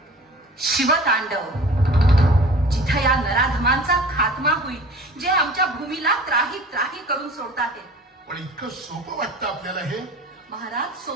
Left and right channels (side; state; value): both; normal; correlation 0.43